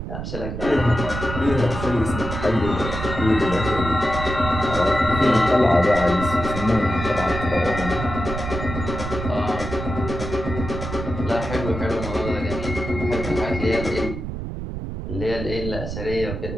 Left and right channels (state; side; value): noise; right; rumble, 6 dB below the sound